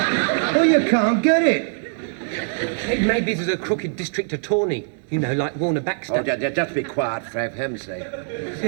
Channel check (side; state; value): left; silent; 64 dB below the other